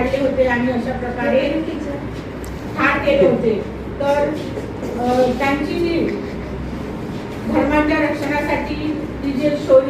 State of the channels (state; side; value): identical; both; correlation 1.00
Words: होते आणि अशा प्रकारे ठार केले होते. तर त्यांची जी धर्माच्या रक्षणासाठी ती जे